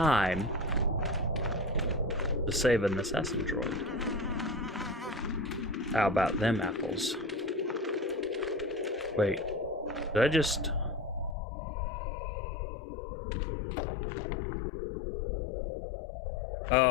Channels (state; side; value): drops out; right; at 11.4 s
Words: to save an assassin droid. How about them apples? Wait, did I just...